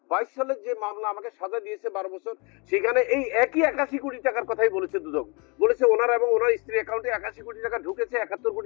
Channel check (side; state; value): right; quieter; 30.9 dB